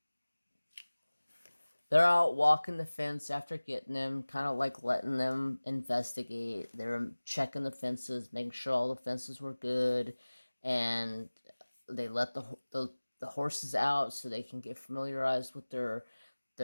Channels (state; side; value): inverted; both; correlation -1.00